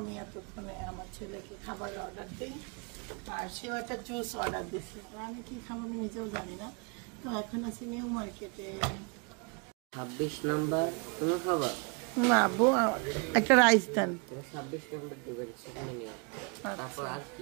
এতক্ষণে আমার ছেলেকে খাবার অর্ডার দিই। আর সেও একটা জুস অর্ডার দিচ্ছে। তো আমি কি খাবো আমি নিজেও জানি না। তো এখন আছি নিউ মার্কেটে। 26 নাম্বার তুমি খাবার? না আব্বু, একটা রাইস দেন। 26 নাম্বার দিবেন, সেখানে নিও। তারপর আর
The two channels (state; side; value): quieter; left; 32.9 dB